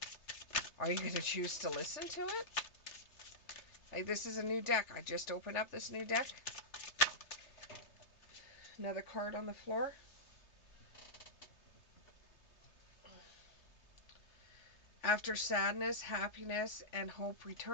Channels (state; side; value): late; right; 3.3 ms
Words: Are you going to choose to listen to it? Like, this is a new deck. I just opened up this new deck. Another card on the floor. After sadness, happiness, and hope